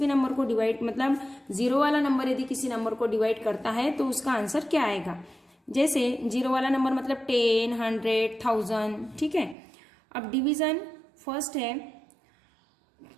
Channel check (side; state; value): left; drops out; at 9.6 s